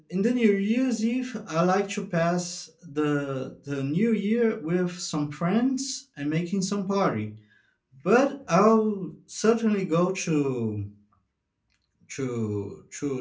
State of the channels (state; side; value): identical; both; correlation 1.00